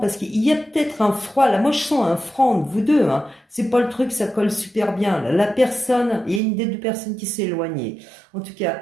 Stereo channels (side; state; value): left; drops out; at 6.4 s